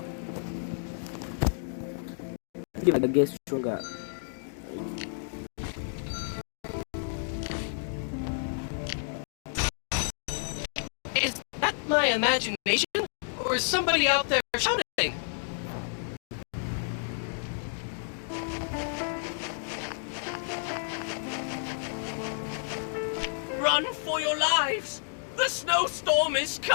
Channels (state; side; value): silent; right; digital silence